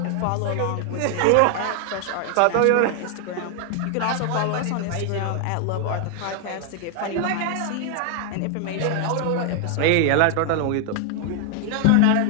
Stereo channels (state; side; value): different; both; correlation 0.00